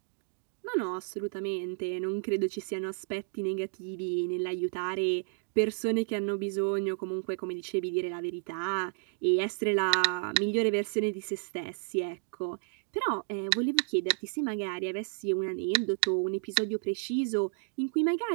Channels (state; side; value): silent; left; digital silence